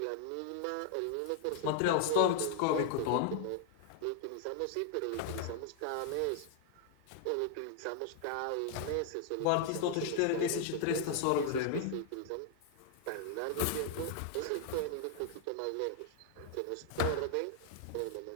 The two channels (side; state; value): both; different; correlation 0.00